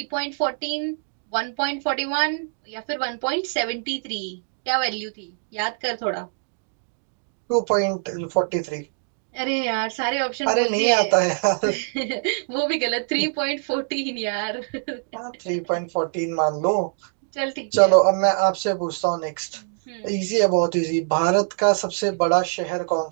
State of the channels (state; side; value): silent; left; 61 dB below the other